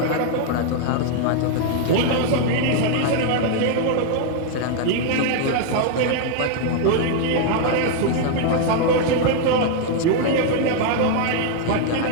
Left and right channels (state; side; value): different; both; correlation 0.00